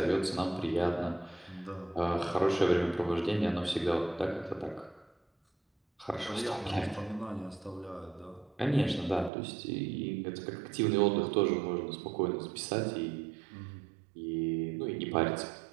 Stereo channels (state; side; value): drops out; left; at 9.3 s